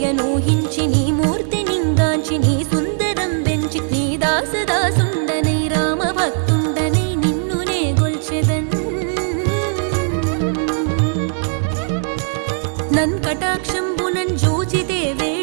నీ మూర్తి నింగాంచి నీ సుందరం పెంచి నీ దాసదాసుండనై రామ భక్తుండనై నిన్నునే గొల్చెదన్ నన్ కటాక్షంబునన్ జూచితే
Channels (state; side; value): silent; left; digital silence